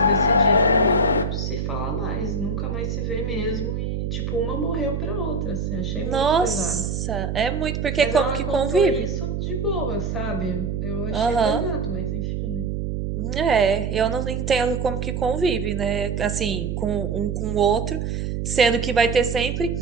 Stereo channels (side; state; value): right; noise; hum, 2 dB below the sound